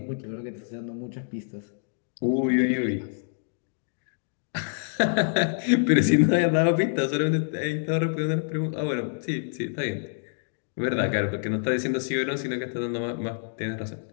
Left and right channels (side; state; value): right; silent; digital silence